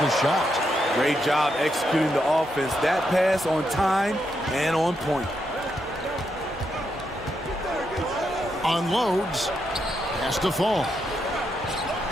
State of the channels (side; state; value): both; normal; correlation 0.81